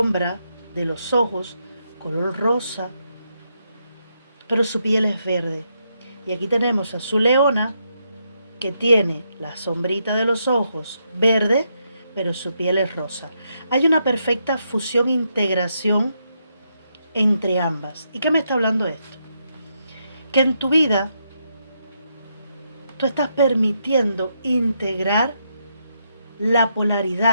de los ojos, color rosa, pero su piel es verde. Y aquí tenemos a su leona, que tiene la sombrita de los ojos verde, pero su piel es rosa. Hay una perfecta fusión, integración entre ambas. ¿Y qué me está hablando esto? Que en tu vida tú estás permitiendo integrar la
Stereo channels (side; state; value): both; inverted; correlation -0.80